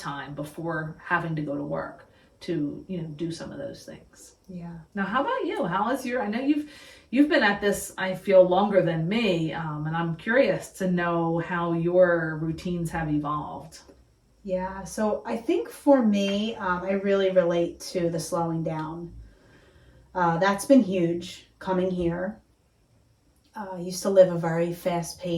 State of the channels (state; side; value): identical; both; correlation 1.00